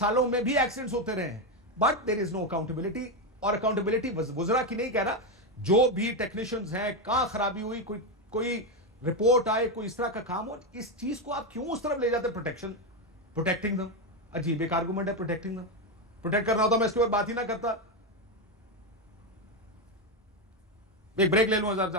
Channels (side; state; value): both; normal; correlation 0.08